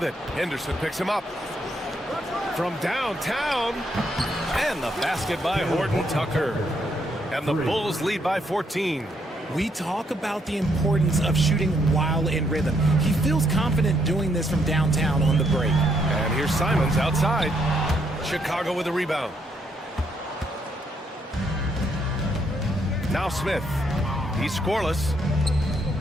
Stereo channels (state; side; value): normal; both; correlation 0.74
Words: it. Henderson picks him up. From downtown. And the basket by Horton Tucker. And the Bulls lead by 14. We talk about the importance of shooting while in rhythm. He feels confident doing this from downtown on the break. And here's Simons outside. Chicago with a rebound. Now Smith. He's scoreless.